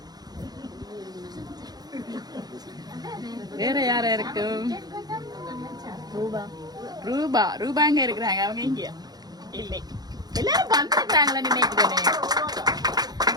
வேற யாரா இருக்கும்? ரூபா. ரூபா எங்க இருக்கிறாங்க? அவங்க இங்க இல்லை. எல்லாரும் வந்துருக்காங்களா நினைக்கிறேன்.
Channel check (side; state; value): left; late; 0.19 ms